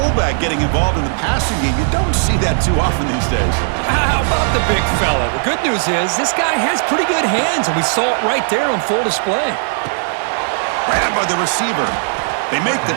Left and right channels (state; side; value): silent; left; digital silence